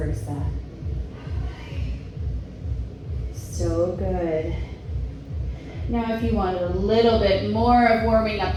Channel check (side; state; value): both; identical; correlation 1.00